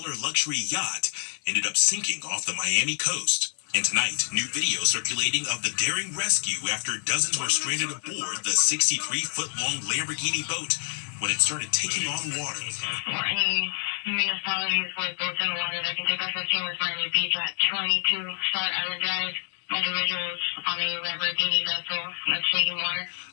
luxury yacht ended up sinking off the Miami coast. And tonight, new video circulating of the daring rescue after dozens were stranded aboard the 63-foot-long Lamborghini boat when it started taking on water. Any municipalities with boats in the water that can take us as soon as Miami Beach at 22 Star Island Drive. Individuals on a Lamborghini vessel that's taking water.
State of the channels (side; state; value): right; silent; 60 dB below the other